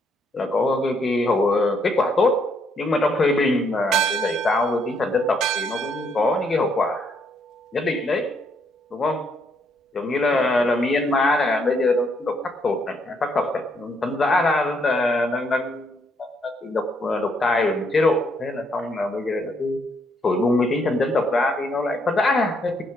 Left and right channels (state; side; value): normal; both; correlation 0.72